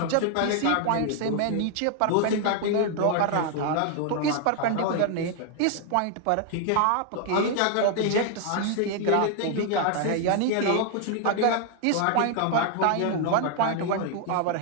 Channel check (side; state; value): both; different; correlation 0.00